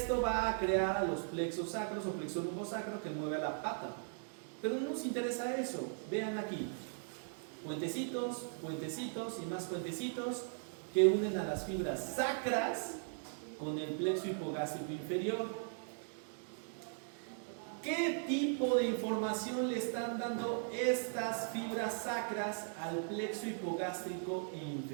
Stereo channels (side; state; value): left; silent; digital silence